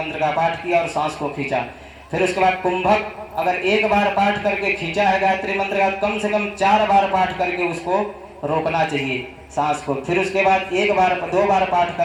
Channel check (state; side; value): identical; both; correlation 1.00